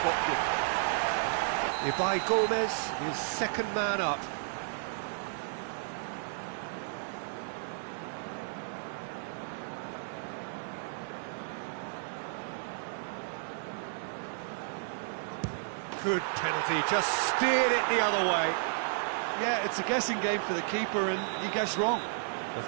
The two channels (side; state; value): left; silent; digital silence